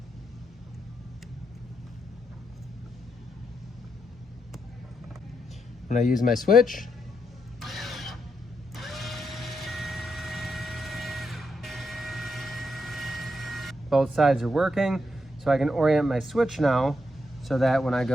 When I use my switch, both sides are working, so I can orient my switch now so that when I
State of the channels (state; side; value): normal; both; correlation 0.82